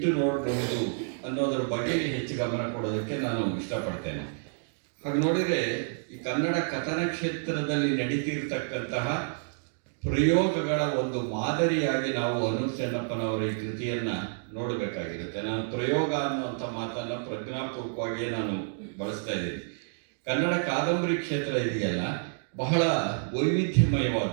ನೋಡಬಹುದು ಅನ್ನೋದರ ಬಗೆಗೆ ಹೆಚ್ಚು ಗಮನ ಕೊಡೋದಕ್ಕೆ ನಾನು ಇಷ್ಟಪಡ್ತೇನೆ. ಹಾಗೆ ನೋಡಿದರೆ ಈ ಕನ್ನಡ ಕಥನ ಕ್ಷೇತ್ರದಲ್ಲಿ ನಡೀತಿರ್ತಕ್ಕಂತಹ ಪ್ರಯೋಗಗಳ ಒಂದು ಮಾದರಿಯಾಗಿ ನಾವು ಅನೂಪ್ ಚೆನ್ನಪ್ಪನವರ ಈ ಕೃತಿಯನ್ನು ನೋಡಬೇಕಾಗಿರುತ್ತೆ. ನಾನು ಪ್ರಯೋಗ ಅನ್ನುವಂಥ ಮಾತನ್ನು ಪ್ರಜ್ಞಾಪೂರ್ವಕವಾಗಿಯೇ ನಾನು ಬಳಸ್ತಾ ಇದ್ದೀನಿ. ಕನ್ನಡ ಕಾದಂಬರಿ ಕ್ಷೇತ್ರ ಇದೆಯಲ್ಲ, ಬಹಳ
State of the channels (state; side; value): silent; left; digital silence